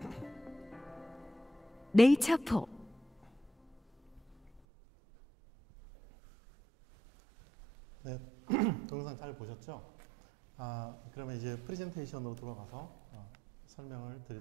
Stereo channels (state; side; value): drops out; left; at 4.6 s